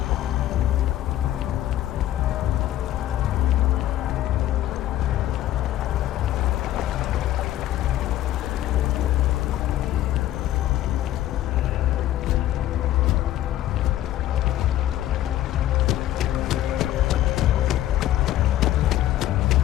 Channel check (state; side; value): quieter; right; 13.4 dB